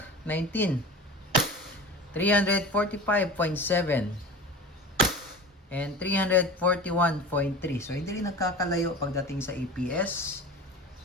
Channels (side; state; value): both; normal; correlation 0.34